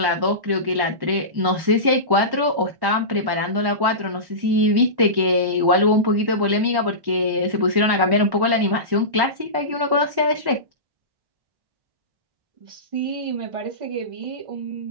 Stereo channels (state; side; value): late; left; 1.1 ms